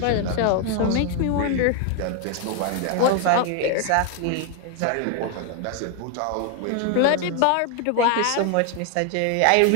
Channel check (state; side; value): different; both; correlation 0.01